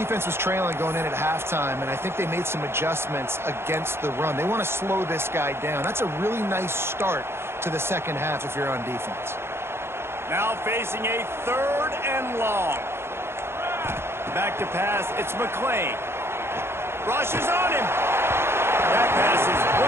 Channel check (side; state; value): left; late; 0.12 ms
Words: was trailing going in at halftime, and I think they made some adjustments against the run. They want to slow this guy down. That's a really nice start to the second half if you're on defense. Now facing a 3rd and long. Back to pass. It's McClain. Rushes on him. That pass is